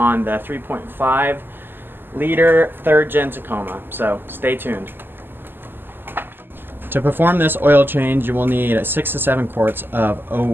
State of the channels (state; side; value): late; left; 0.097 ms